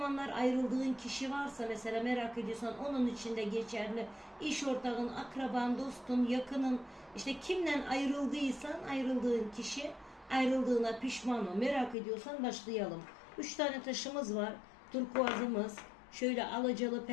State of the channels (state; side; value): drops out; right; at 12.0 s